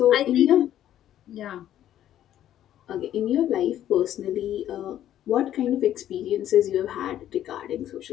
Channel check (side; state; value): right; quieter; 11.7 dB